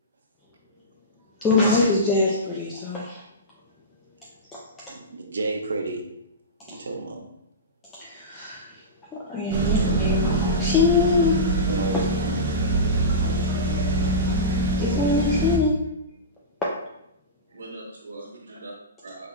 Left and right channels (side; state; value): both; normal; correlation -0.17